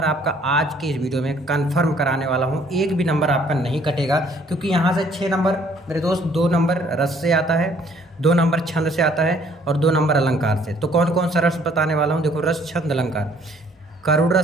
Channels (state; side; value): normal; both; correlation 0.61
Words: आपका आज के इस वीडियो में कंफर्म कराने वाला हूँ। एक भी नंबर आपका नहीं कटेगा, क्योंकि यहाँ से 6 नंबर मेरे दोस्त, 2 नंबर रस से आता है, 2 नंबर छंद से आता है और 2 नंबर अलंकार से। तो कौन कौन सा रस बताने वाला हूँ, देखो, रस, छंद, अलंकार। करुण